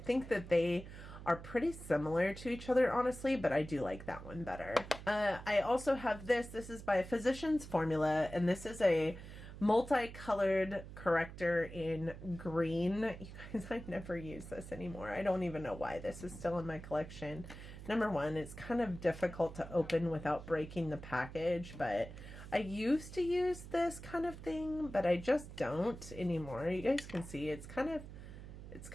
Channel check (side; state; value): right; noise; hum, 13 dB below the sound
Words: that they are pretty similar to each other, honestly, but I do like that one better. I also have this. This is by Physicians Formula, and this is a multicolored corrector in green. You guys, I never use this anymore. I don't even know why this is still in my collection. Number one, it's kind of difficult to open without breaking the package, but I used to use this kind of thing, but I just don't anymore. You guys can see it's kind of